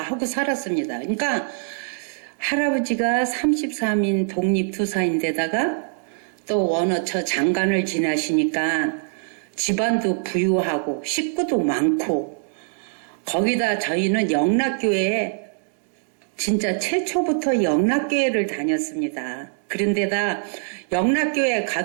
하고 살았습니다. 그러니까 할아버지가 33인 독립투사인데다가 또 원어처 장관을 지나시니까 집안도 부유하고 식구도 많고 거기다 저희는 영락교회에 진짜 최초부터 영락교회를 다녔습니다. 그런데다 영락교회에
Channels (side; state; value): left; silent; digital silence